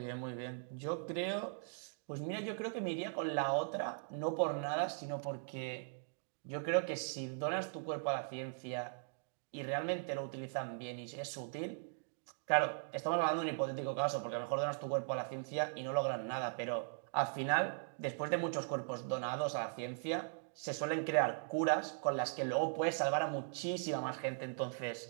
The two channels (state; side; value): silent; left; digital silence